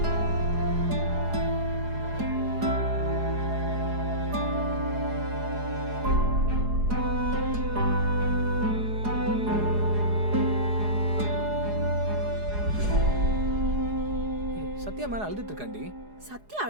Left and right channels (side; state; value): left; late; 4.8 ms